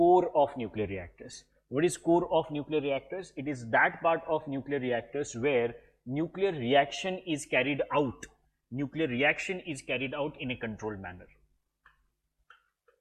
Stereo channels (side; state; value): both; identical; correlation 1.00